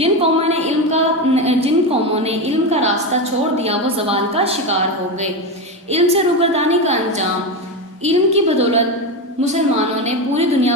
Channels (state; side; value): normal; both; correlation 0.15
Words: قوموں نے علم کا راستہ چھوڑ دیا وہ زوال کا شکار ہو گئے۔ علم سے روگردانی کا انجام: علم کی بدولت مسلمانوں نے پوری دنیا